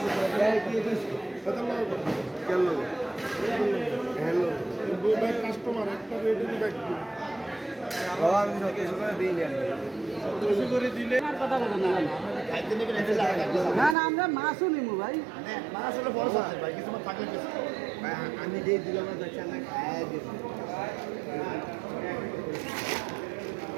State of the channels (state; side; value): drops out; left; at 14.0 s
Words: না না, আমরা মাছও নিবো ভাই। আমি যে দিলাম না, খায় দিব।